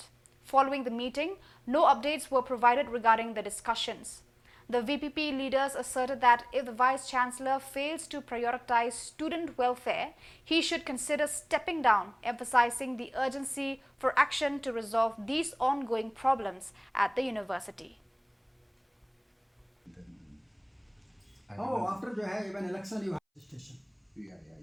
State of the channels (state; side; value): identical; both; correlation 1.00